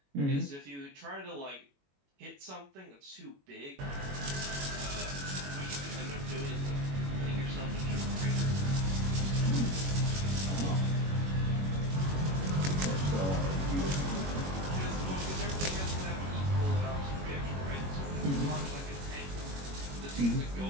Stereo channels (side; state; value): left; late; 21 ms